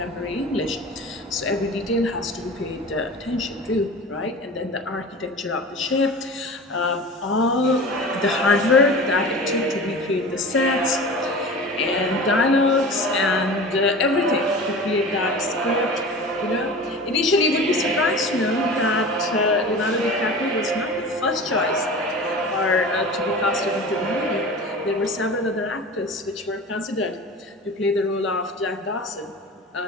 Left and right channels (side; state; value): both; normal; correlation 0.35